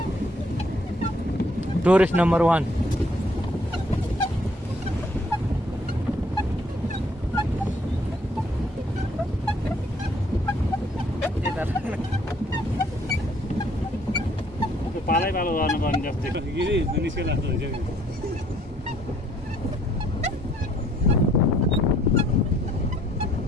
टुरिस्ट नम्बर 1 पालै पालो गर्नुपर्ने जस्तो गिरी निस्केर जस्तो हुन्छ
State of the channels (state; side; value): normal; both; correlation 0.64